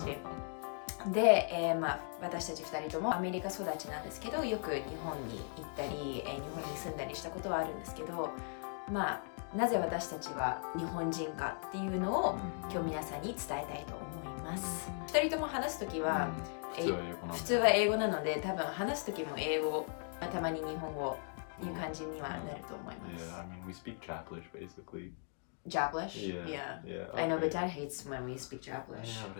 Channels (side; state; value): right; silent; 52 dB below the other